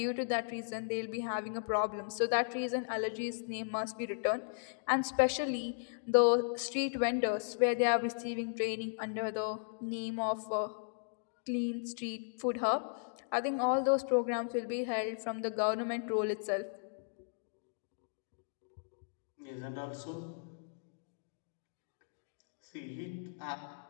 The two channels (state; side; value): silent; right; digital silence